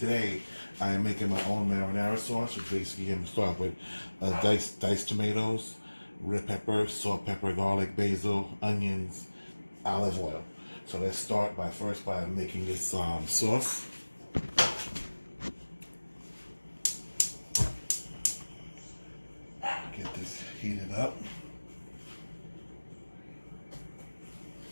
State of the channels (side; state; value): both; inverted; correlation -1.00